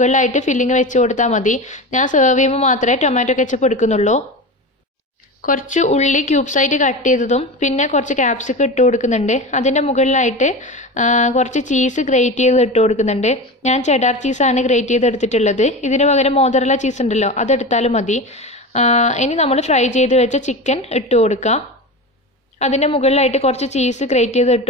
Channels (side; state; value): both; normal; correlation 0.26